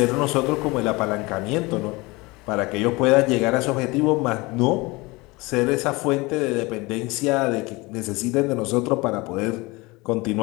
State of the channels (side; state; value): right; quieter; 23.8 dB